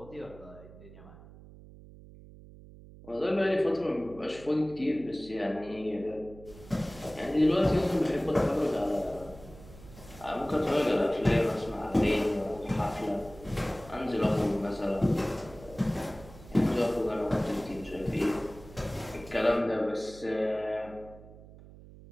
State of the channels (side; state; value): right; noise; hum, 19 dB below the sound